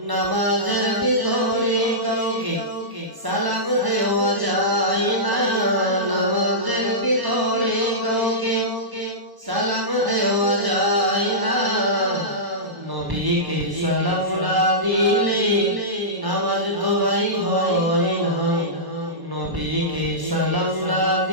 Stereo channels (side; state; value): left; late; 1.0 ms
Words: নামাজের ভিতরে কাউকে সালাম দেওয়া যায় না। নামাজের ভিতরে কাউকে সালাম দেওয়া যায় না। নবীকে সালাম না দিলে নামাজ তো ভাই হয় না। নবীকে সালাম না